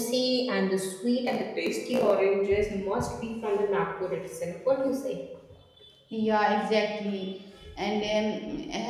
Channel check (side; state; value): both; identical; correlation 1.00